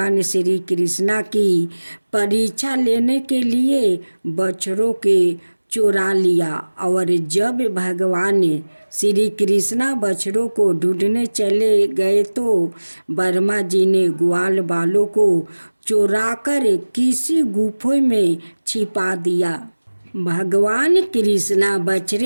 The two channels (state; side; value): inverted; both; correlation -1.00